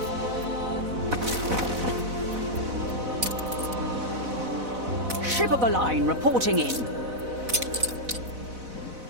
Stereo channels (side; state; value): left; late; 4.0 ms